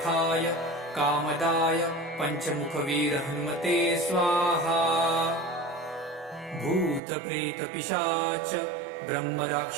कामदाय पञ्चमुखवीर हनुमते स्वाहा। भूतप्रेतपिशाच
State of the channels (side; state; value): left; drops out; at 7.0 s